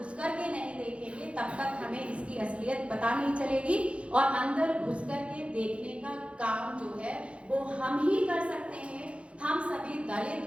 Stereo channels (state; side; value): late; left; 0.060 ms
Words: कर के नहीं देखेंगे, तब तक हमें इसकी असलियत पता नहीं चलेगी। और अंदर घुस कर के देखने का काम जो है वो हम ही कर सकते हैं। हम सभी